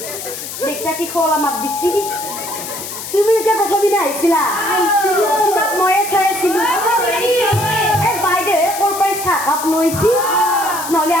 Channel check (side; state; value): left; noise; hiss, 8 dB below the sound